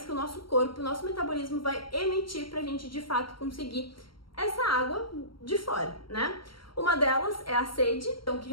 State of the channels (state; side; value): late; right; 0.74 ms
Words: que o nosso corpo, o nosso metabolismo vai emitir para a gente de fato conseguir essa água de fora, né? Uma delas é a sede, então que